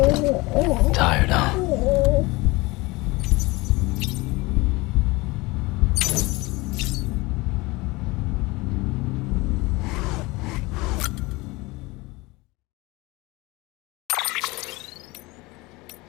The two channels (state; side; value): quieter; right; 22.8 dB